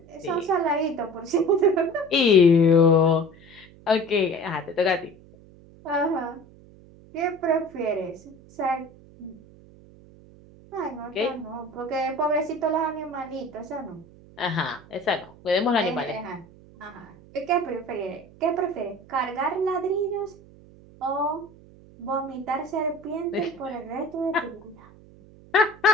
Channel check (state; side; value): noise; right; hum, 23 dB below the sound